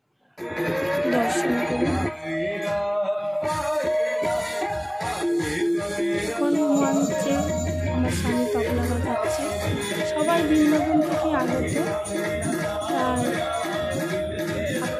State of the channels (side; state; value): both; identical; correlation 1.00